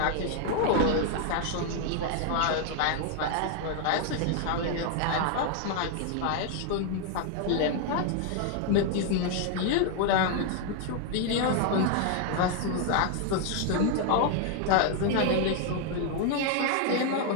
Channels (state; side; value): different; both; correlation 0.00